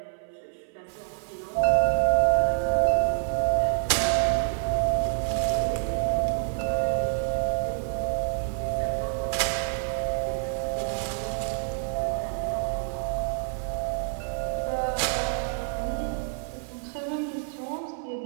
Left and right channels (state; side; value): silent; left; 60 dB below the other